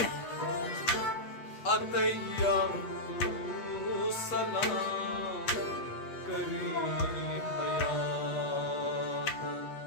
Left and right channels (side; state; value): right; late; 8.3 ms